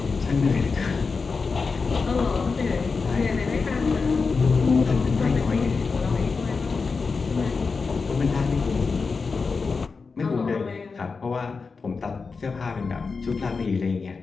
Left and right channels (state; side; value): quieter; right; 4.7 dB